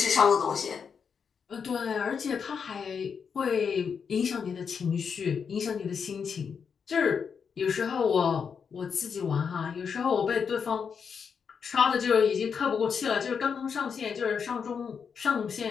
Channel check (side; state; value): right; quieter; 6.4 dB